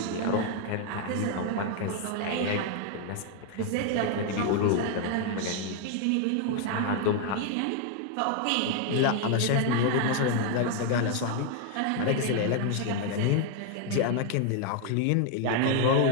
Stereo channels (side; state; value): both; different; correlation 0.00